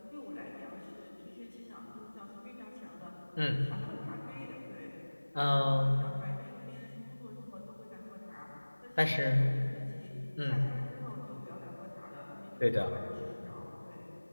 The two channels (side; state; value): both; inverted; correlation -1.00